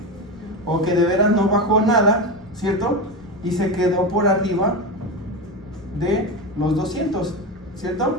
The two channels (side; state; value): left; noise; rumble, 28 dB below the sound